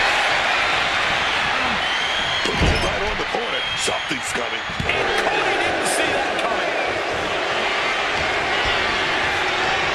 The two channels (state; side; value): identical; both; correlation 1.00